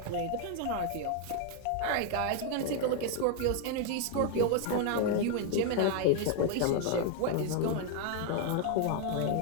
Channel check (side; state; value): both; different; correlation 0.01